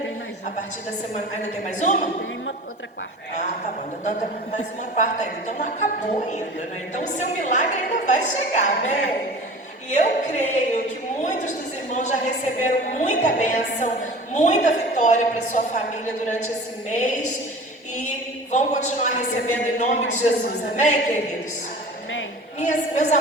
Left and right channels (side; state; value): both; normal; correlation 0.39